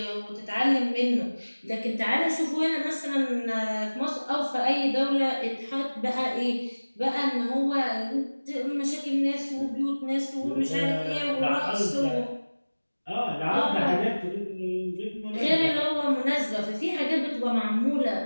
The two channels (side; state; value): both; inverted; correlation -1.00